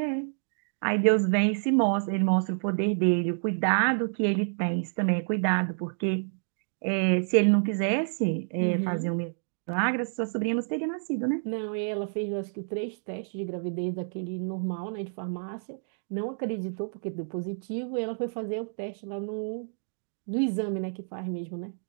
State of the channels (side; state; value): left; silent; digital silence